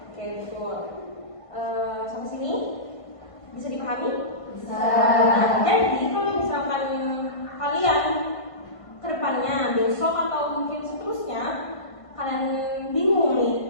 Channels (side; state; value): right; late; 1.5 ms